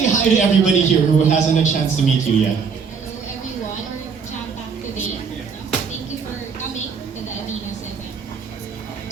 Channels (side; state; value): left; quieter; 5.9 dB